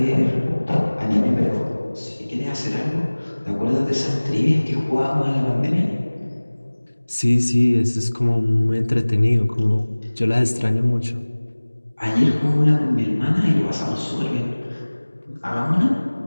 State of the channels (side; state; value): both; inverted; correlation -1.00